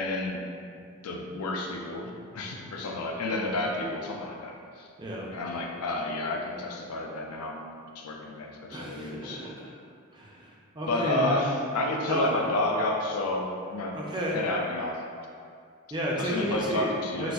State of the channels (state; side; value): normal; both; correlation 0.06